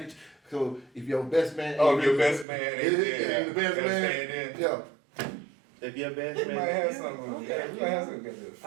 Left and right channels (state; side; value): drops out; left; at 2.5 s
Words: So if your best man. Oh, ain't if your really- best man ain't Yeah, there, the best gotta man. stand in. Yeah. If your best We man, might have yeah, something. okay, Yeah, we might have something. Got the